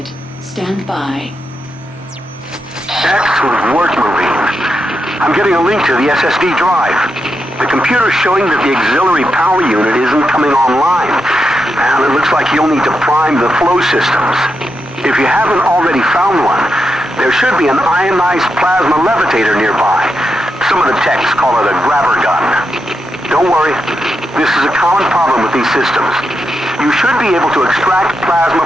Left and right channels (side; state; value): both; normal; correlation 0.85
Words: Stand by. Excellent work, Marine. I'm getting a link to the SSD drive. The computer's showing that the auxiliary power unit isn't coming online, and it looks like you'll need to prime the flow systems. If you haven't already found one, there should be an ionized plasma levitator nearby. Some of the techs call it a grabber gun. Don't worry, this is a common problem with these systems. You should be able to extract plasma